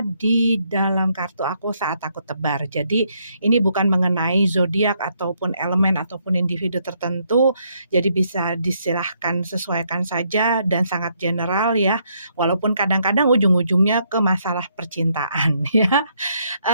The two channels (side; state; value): both; inverted; correlation -0.73